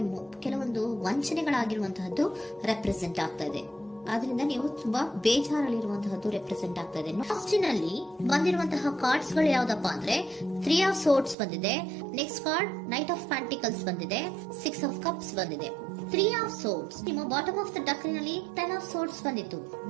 ಕೆಲವೊಂದು ವಂಚನೆಗಳಾಗಿರುವಂತಹದ್ದು ರೆಪ್ರೆಸೆಂಟ್ ಆಗ್ತಾ ಇದೆ. ಆದ್ರಿಂದ ನೀವು ತುಂಬಾ ಬೇಜಾರಲ್ಲಿರುವಂತಹದ್ದು ರೆಪ್ರೆಸೆಂಟ್ ಆಗ್ತಾ ಇದೆ. ನಲ್ಲಿ ಬಂದಿರುವಂತಹ ಕಾರ್ಡ್ಸ್ ಗಳು ಯಾವ್ದಪ್ಪ ಅಂದ್ರೆ 3 ಆಫ್ ಸೋರ್ಟ್ಸ್ ಬಂದಿದೆ. Next card knight of pentacles ಬಂದಿದೆ. 6 ಆಫ್ ಕಪ್ಸ್ ಬಂದಿದೆ. 3 ಆಫ್ ಸೋರ್ಟ್ಸ್ ನಿಮ್ಮ ಬಾಟಮ್ ಆಫ್ ದ ಡಕ್ನಲ್ಲಿ 10 ಆಫ್ ಸೋರ್ಟ್ಸ್ ಬಂದಿತ್ತು.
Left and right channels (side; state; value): left; drops out; at 11.4 s